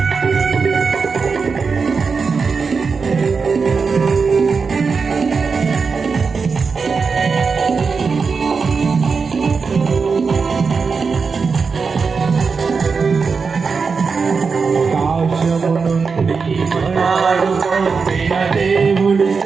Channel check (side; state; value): left; quieter; 5.1 dB